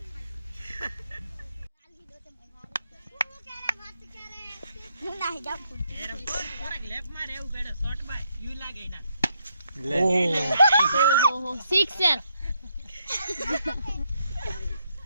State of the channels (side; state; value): both; inverted; correlation -0.76